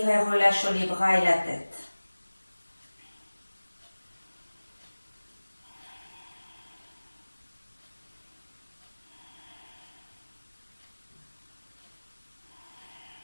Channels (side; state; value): both; inverted; correlation -1.00